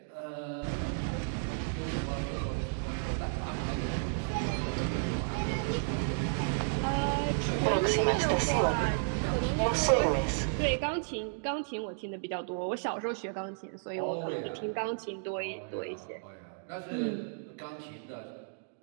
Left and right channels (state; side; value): silent; left; digital silence